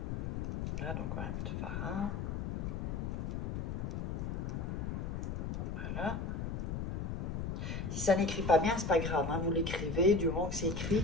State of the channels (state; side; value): noise; left; rumble, 2 dB below the sound